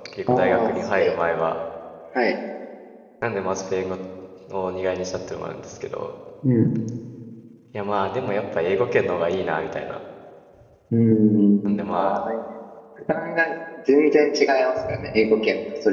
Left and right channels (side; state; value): both; identical; correlation 1.00